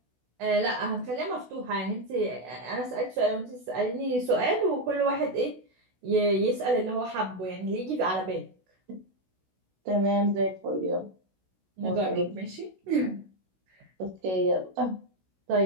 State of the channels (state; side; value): late; left; 16 ms